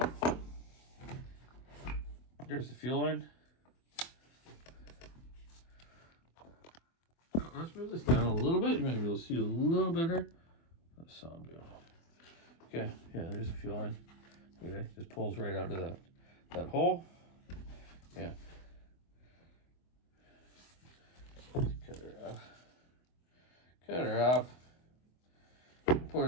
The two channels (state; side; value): late; right; 24 ms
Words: There's the fuel line. Let's move this down a little bit. You might be able to see a little better. That sound good. Okay, yeah, there's the fuel line. Okay, just pulls right out of that hole. Yeah. Let's cut her off. Cut her off. Put